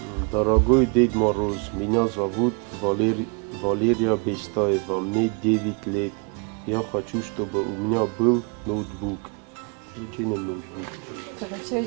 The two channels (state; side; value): quieter; left; 34.4 dB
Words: Дорогой Дед Мороз, меня зовут Валерия Бестаева, мне 9 лет. Я хочу, чтобы у меня был ноутбук.